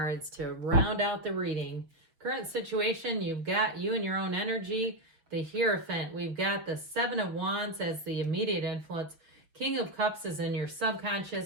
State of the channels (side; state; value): left; late; 6.3 ms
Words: to round out the reading. Current situation, you've got you and your own energy, the Hierophant. We've got the Seven of Wands as the immediate influence. King of Cups is in your